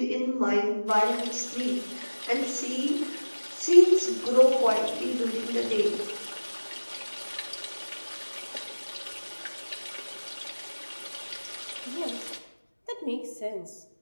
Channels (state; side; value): inverted; both; correlation -1.00